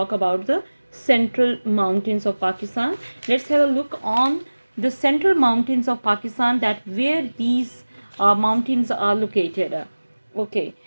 about the central mountains of Pakistan. Let's have a look on the central mountains of Pakistan, that where these mountains are located. Okay,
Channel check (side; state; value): both; inverted; correlation -1.00